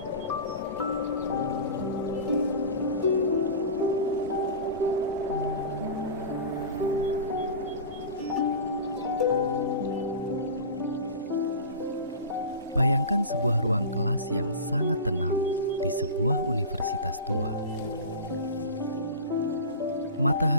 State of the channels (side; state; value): both; inverted; correlation -0.32